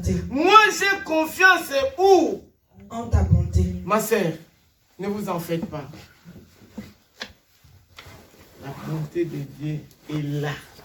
Moi, j'ai confiance où? En ta bonté. Ma sœur, ne vous en faites pas. La bonté de Dieu est là.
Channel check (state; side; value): identical; both; correlation 1.00